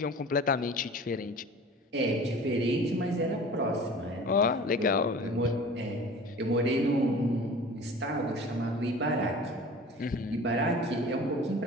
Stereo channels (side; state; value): both; normal; correlation 0.41